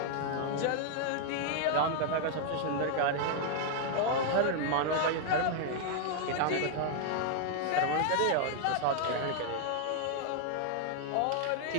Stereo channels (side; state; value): both; different; correlation 0.00